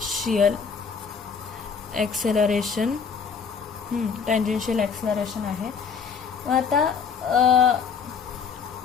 acceleration, tangential acceleration आहे. आता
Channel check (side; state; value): right; quieter; 6.2 dB